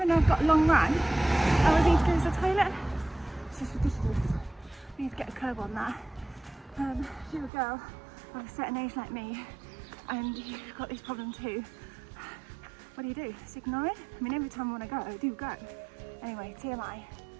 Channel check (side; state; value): left; drops out; at 7.5 s